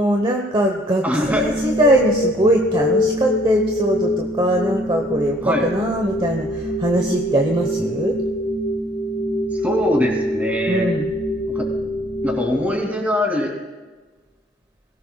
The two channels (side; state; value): both; normal; correlation 0.60